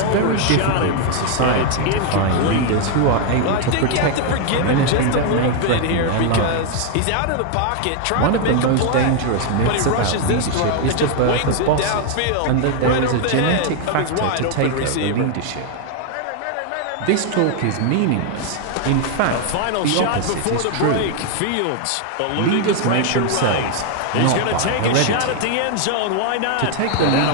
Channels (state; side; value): different; both; correlation 0.00